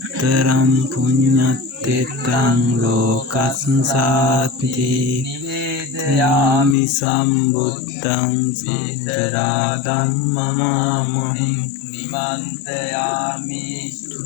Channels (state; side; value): drops out; right; at 6.8 s